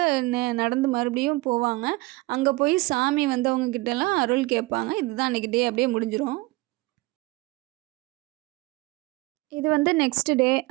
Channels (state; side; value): quieter; left; 22.6 dB